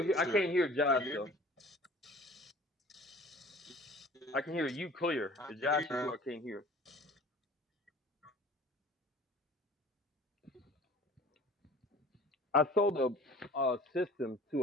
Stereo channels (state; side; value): normal; both; correlation 0.46